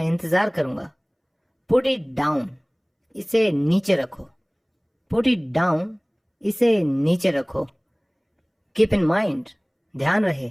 इंतजार करूंगा। पुट इट डाउन, इसे नीचे रखो। पुट इट डाउन, इसे नीचे रखो। कीप इन माइंड, ध्यान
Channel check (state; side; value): identical; both; correlation 1.00